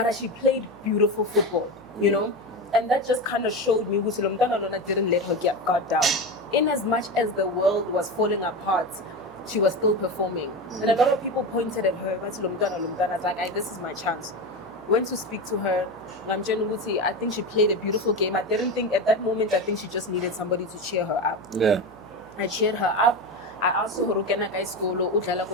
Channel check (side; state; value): right; noise; hum, 26 dB below the sound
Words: she played beautiful football, and that just kind of showed me Lomdana didn't let her get guard down. In as much as the world was falling apart, she was still performing. And a lot of people pointed at her, but Lomdana, I was like, this is my chance. Went to speak to her. I think she played a beautiful game. I didn't think at that moment, I think she just needed somebody to cheer her up. Yeah. I cheered her up. I asked her,